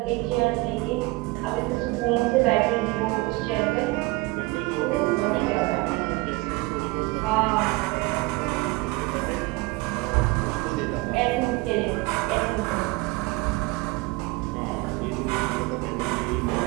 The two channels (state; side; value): quieter; left; 23.2 dB